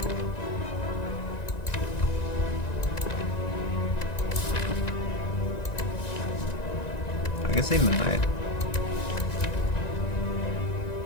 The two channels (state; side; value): late; right; 1.9 ms